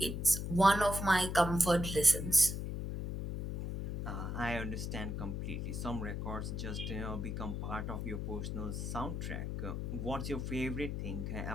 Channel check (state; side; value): noise; left; hum, 3 dB below the sound